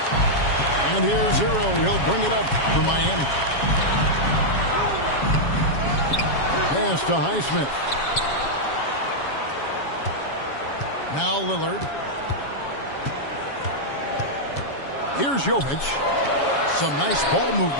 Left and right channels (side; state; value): right; late; 7.2 ms